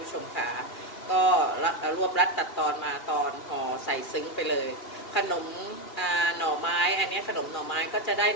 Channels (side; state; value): right; late; 2.4 ms